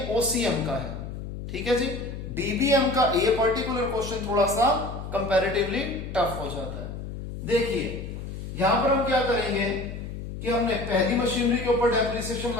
ओसीएम का है, ठीक है जी। डीबीएम का ये पर्टिकुलर क्वेश्चन थोड़ा सा कंपैरेटिवली टफ हो जाता है। देखिए यहां पर हम क्या करेंगे कि हमने पहली मशीनरी के ऊपर डेप्रिसिएशन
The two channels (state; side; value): noise; left; hum, 8 dB below the sound